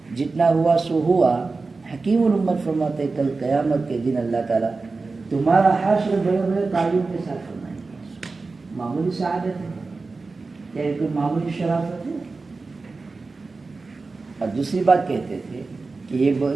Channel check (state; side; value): quieter; left; 3.9 dB